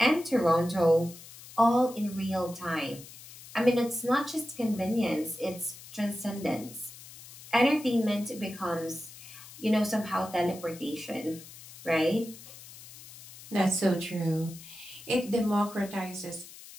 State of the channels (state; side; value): noise; left; hiss, 17 dB below the sound